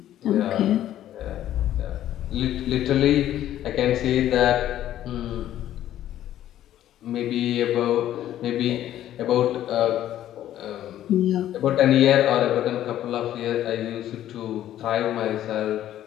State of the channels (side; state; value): right; quieter; 12.3 dB